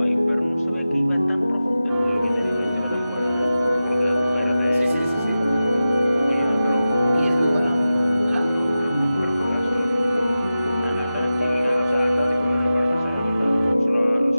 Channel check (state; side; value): inverted; both; correlation -0.94